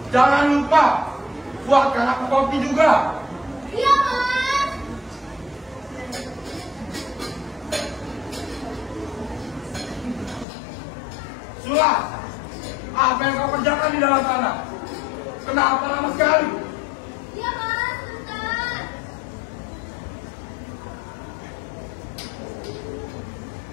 Jangan lupa, buatkan aku kopi juga. Iya, Mas. Sulas, apa yang kau kerjakan di dalam sana? Kenapa lama sekali? Iya, Mas, sebentar.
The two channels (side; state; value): right; drops out; at 10.5 s